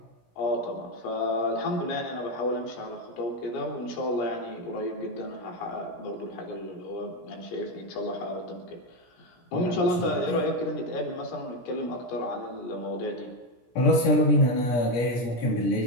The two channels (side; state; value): right; late; 17 ms